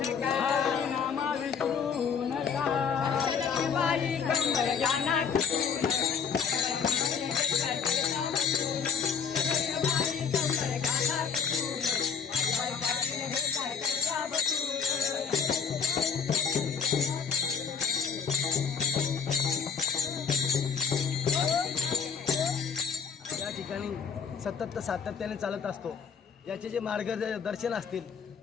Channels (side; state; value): right; quieter; 6.4 dB